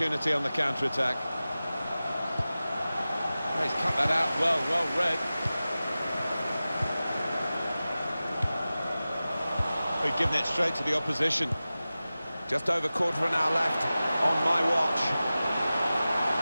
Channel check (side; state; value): both; inverted; correlation -0.96